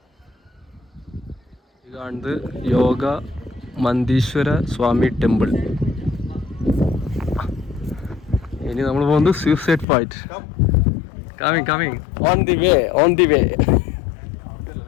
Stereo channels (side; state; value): right; drops out; at 9.9 s